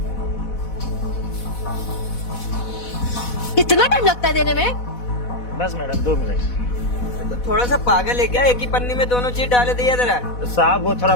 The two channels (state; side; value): late; right; 4.1 ms